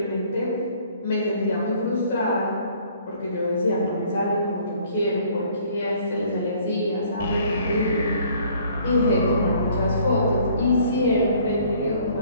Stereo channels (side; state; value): both; inverted; correlation -0.58